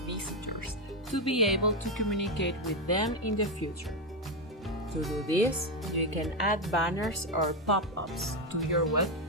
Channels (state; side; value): normal; both; correlation 0.07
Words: visitors to be able to communicate with them in the future. To do this, you can add banners or pop-ups to your web